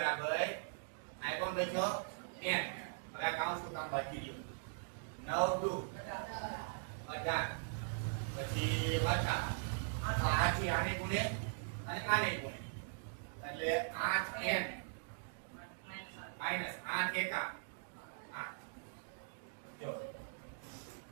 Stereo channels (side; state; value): left; silent; digital silence